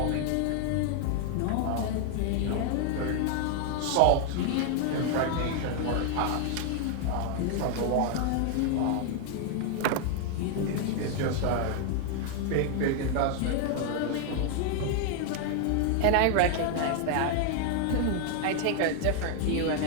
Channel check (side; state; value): both; different; correlation 0.00